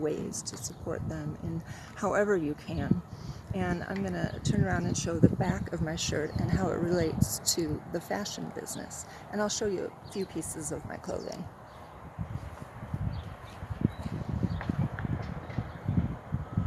to support them in however you can. And I'm going to turn around and show the back of my shirt and how it relates to the fashion business. And I'll show you a few pieces of my clothing.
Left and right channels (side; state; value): both; identical; correlation 1.00